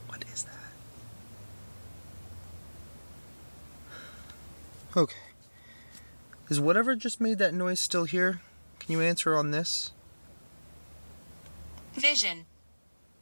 what is that? Okay. Is whatever just made that noise still here? Can you answer on this? Vision.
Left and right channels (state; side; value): inverted; both; correlation -1.00